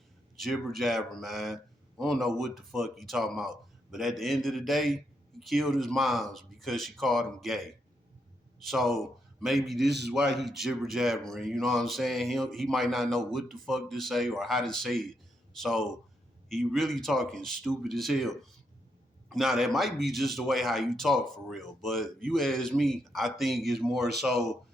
jibber jabber, man. I don't know what the fuck he talking about. But at the end of the day, he killed his moms because she called him gay. So maybe this is why he jibber jabbering. You know what I'm saying? He might not know what the fuck to say or how to say it. So he really talking stupid as hell. Now that might be just the way how you talk for real, but if you ask me, I think it's more so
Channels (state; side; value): normal; both; correlation 0.79